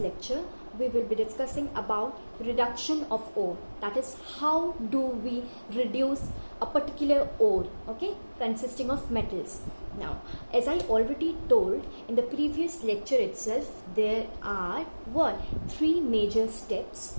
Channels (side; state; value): both; inverted; correlation -1.00